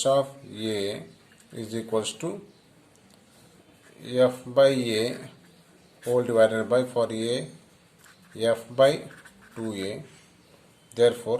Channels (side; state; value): both; identical; correlation 1.00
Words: of A is equals to F by A whole divided by, for A, F by 2A.